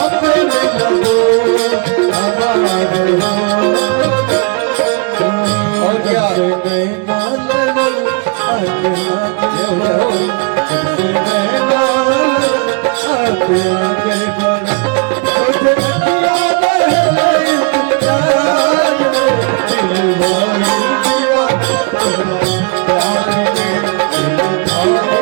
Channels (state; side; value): quieter; left; 34.0 dB